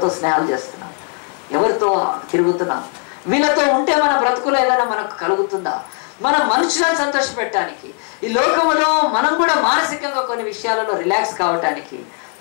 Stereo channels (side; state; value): right; quieter; 38.8 dB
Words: స్నేహాలు చేస్తున్నాం, ఎవరితో తిరుగుతున్నాం, వీళ్ళతో ఉంటే మన బ్రతుకులో ఏదైనా మనకు కలుగుతుందా? మన మనుషులను సంతోషపెట్టడానికి, ఈ లోకంలో మనం కూడా మానసికంగా కొన్ని విషయాలలో రిలాక్స్ కావటానికి